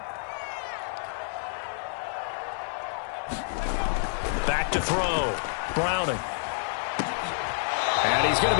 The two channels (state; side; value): silent; right; digital silence